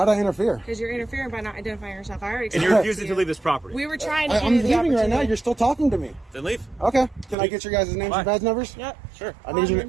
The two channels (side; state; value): left; drops out; at 7.4 s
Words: I interfere? Because you're interfering by not identifying yourself. I already And you're refusing to leave this property. We were trying to. I'm leaving right now. You're still talking to me. Then leave. Okay. Can I get your guys' names and badge numbers? Yep. Sure. I need your.